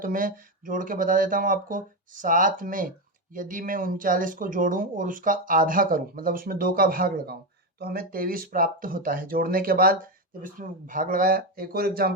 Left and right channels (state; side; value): normal; both; correlation 0.11